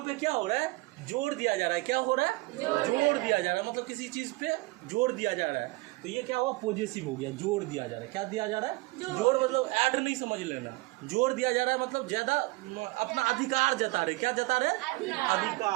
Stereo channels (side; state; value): left; quieter; 23.0 dB